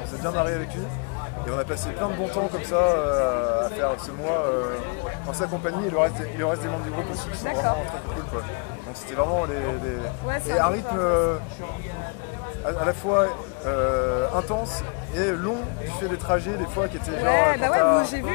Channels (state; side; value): quieter; right; 35.5 dB